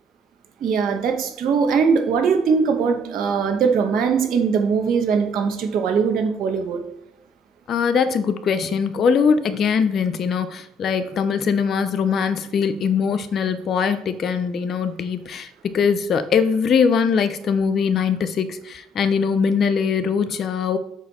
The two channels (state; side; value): normal; both; correlation 0.65